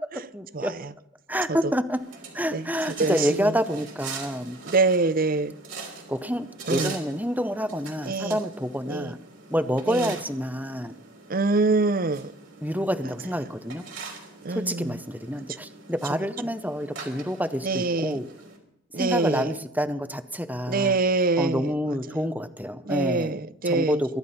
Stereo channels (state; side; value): normal; both; correlation 0.51